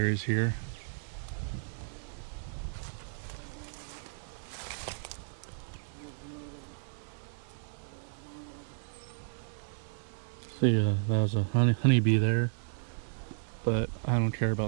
here. See, that was a honeybee there, but I don't care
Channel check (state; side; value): silent; left; 55 dB below the other